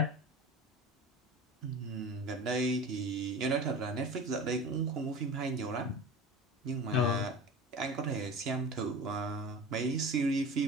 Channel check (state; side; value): normal; both; correlation 0.34